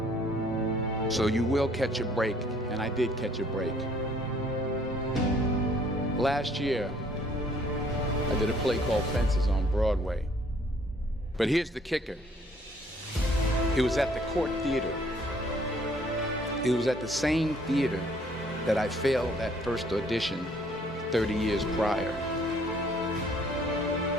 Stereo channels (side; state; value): both; normal; correlation 0.61